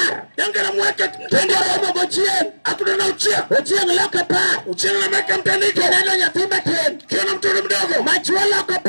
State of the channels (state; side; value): inverted; both; correlation -1.00